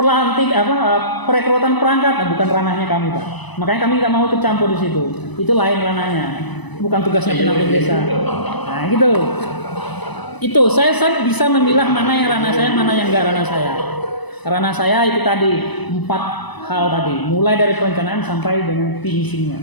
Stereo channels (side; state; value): right; late; 1.0 ms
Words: perekrutan perangkat, bukan ranahnya kami, Pak. Makanya kami nggak mau ikut campur di situ. Itu lain ranahnya, bukan tugasnya pendamping desa. Nah gitu. Itu saya bisa memilah mana yang ranah saya, mana yang enggak ranah saya. Ranah saya itu tadi 4 hal tadi, mulai dari perencanaan sampai dengan finishingnya,